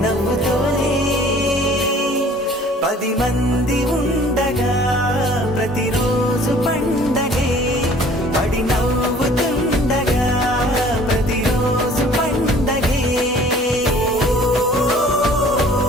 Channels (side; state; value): both; normal; correlation 0.52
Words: నవ్వుతోనే 10 మంది ఉండగా ప్రతిరోజు పండగే పడి నవ్వుతుండగా ప్రతిరోజు పండగే